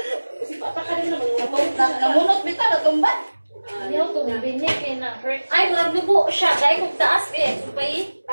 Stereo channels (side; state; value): both; inverted; correlation -1.00